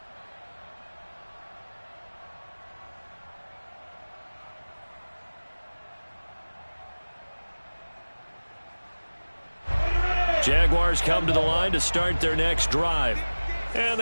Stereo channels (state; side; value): inverted; both; correlation -1.00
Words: Jaguars come to the line to start their next drive. And